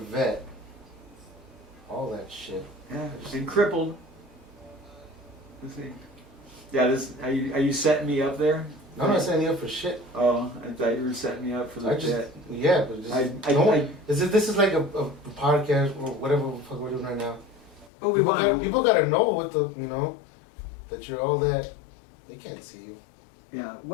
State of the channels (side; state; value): right; drops out; at 17.9 s